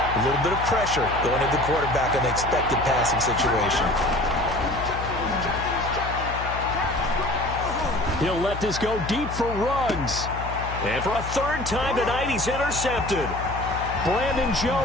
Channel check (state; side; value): noise; left; hum, 8 dB below the sound